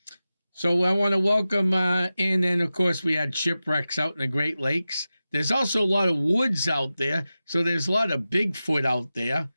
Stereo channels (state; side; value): inverted; both; correlation -0.94